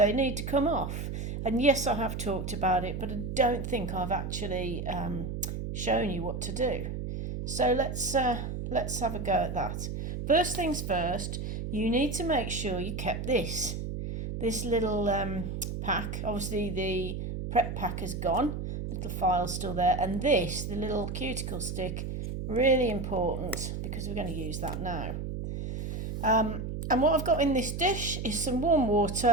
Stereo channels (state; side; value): noise; right; hum, 5 dB below the sound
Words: need to come off. And yes, I have talked about it, but I don't think I've actually shown you what to do. So let's have a go at that. First things first, you need to make sure you kept this little pack. Obviously the prep pack is gone, little file's still there, and this, the little cuticle stick, really important because we're going to use that now. And what I've got in this dish is some warm